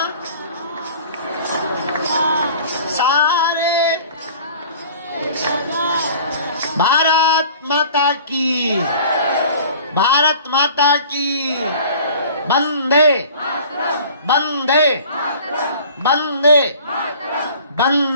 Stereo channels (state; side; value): inverted; both; correlation -0.46